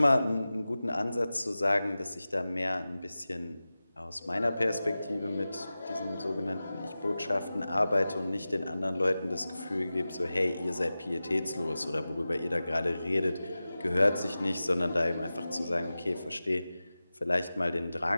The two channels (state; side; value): inverted; both; correlation -0.96